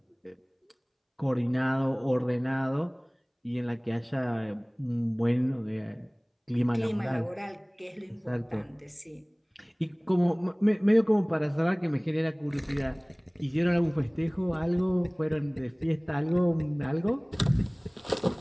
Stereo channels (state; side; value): identical; both; correlation 1.00